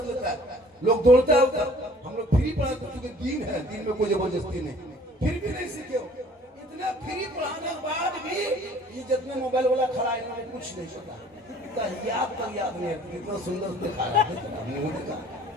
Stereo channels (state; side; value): normal; both; correlation 0.53